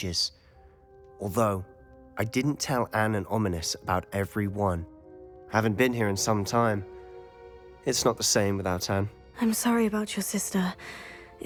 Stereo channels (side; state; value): both; identical; correlation 1.00